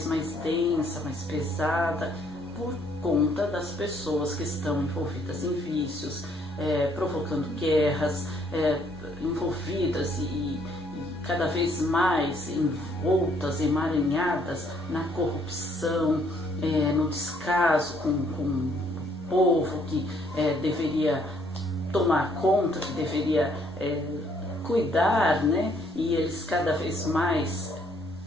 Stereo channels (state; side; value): normal; both; correlation 0.66